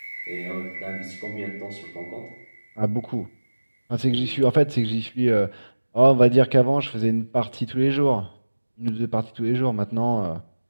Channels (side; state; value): both; inverted; correlation -1.00